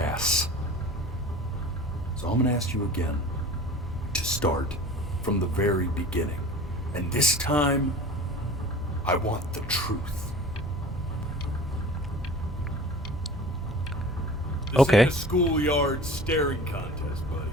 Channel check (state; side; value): normal; both; correlation 0.41